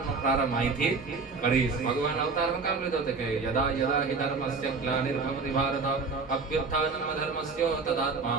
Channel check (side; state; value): left; quieter; 4.3 dB